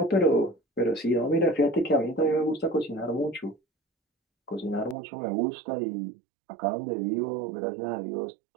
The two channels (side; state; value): left; drops out; at 5.0 s